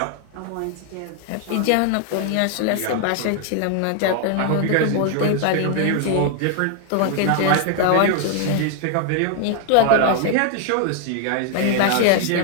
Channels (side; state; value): both; different; correlation 0.00